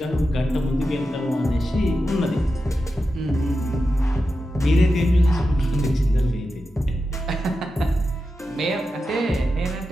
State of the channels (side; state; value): both; normal; correlation 0.90